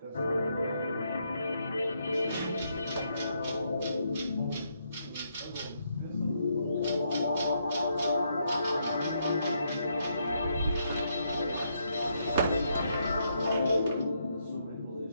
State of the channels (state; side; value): inverted; both; correlation -0.76